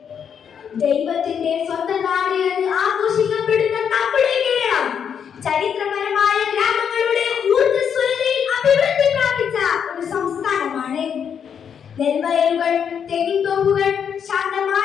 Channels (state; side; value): quieter; right; 7.7 dB